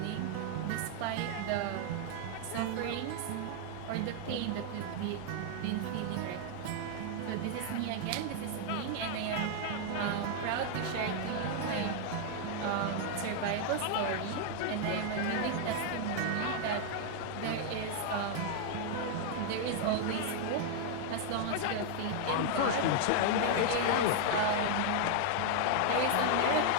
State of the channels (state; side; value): different; both; correlation 0.00